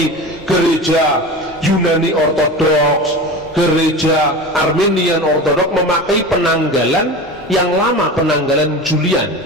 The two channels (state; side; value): normal; both; correlation 0.31